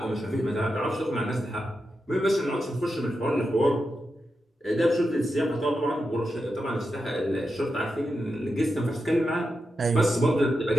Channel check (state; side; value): normal; both; correlation 0.88